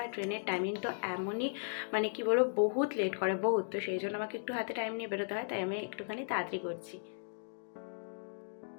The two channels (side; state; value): right; silent; digital silence